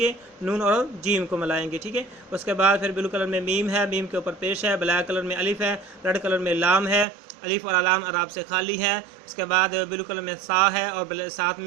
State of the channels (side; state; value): left; drops out; at 7.1 s